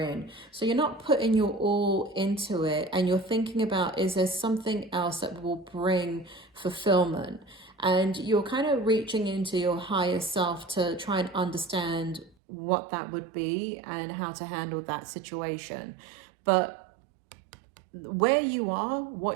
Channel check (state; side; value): drops out; left; at 12.4 s